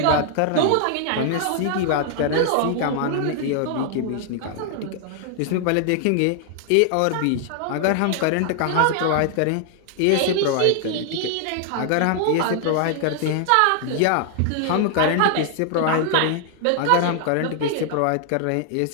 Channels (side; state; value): both; different; correlation 0.00